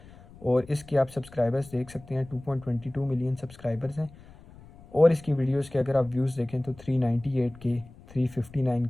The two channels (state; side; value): noise; left; rumble, 21 dB below the sound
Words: और इसके आप सब्सक्राइबर्स देख सकते हैं 2.22 मिलियन सब्सक्राइबर्स हैं। और इसकी वीडियोस के अगर आप व्यूज़ देखें तो 398 के, 359